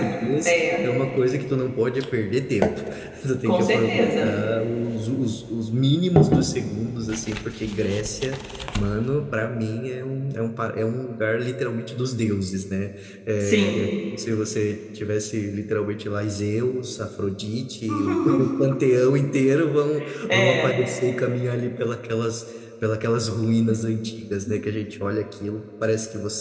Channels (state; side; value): identical; both; correlation 1.00